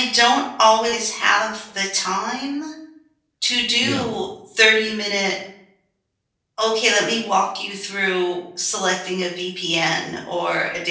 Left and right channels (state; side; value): identical; both; correlation 1.00